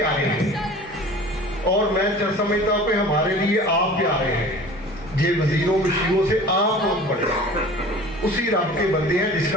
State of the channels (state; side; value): normal; both; correlation 0.42